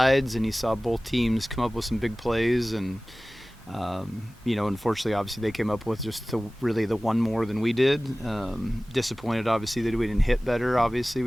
and you saw both teams come up with some big plays. And unfortunately, obviously, they came up with just really the one more than we did. Disappointed, obviously, that we didn't hit better. Obviously,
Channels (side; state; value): both; normal; correlation 0.98